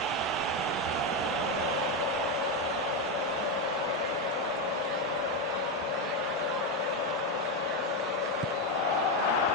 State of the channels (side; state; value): both; normal; correlation 0.08